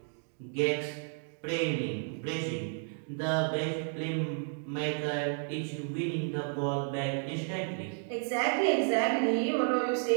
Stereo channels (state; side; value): silent; left; 56 dB below the other